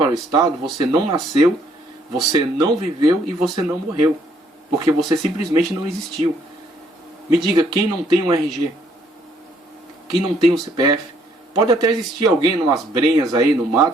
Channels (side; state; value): both; normal; correlation 0.67